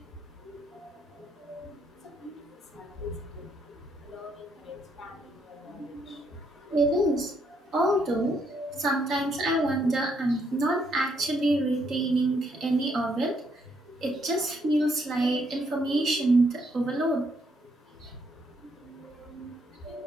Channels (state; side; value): normal; both; correlation 0.73